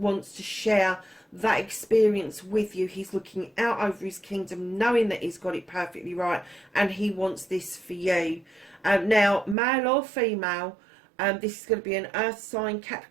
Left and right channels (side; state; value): left; drops out; at 9.6 s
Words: to share that experience with you. He's looking out over his kingdom, knowing that he's got it perfectly right, and he wants this for you. Now, male or female, this is going to be an earth sign,